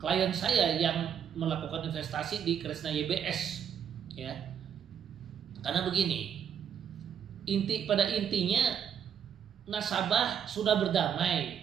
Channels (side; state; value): left; quieter; 8.3 dB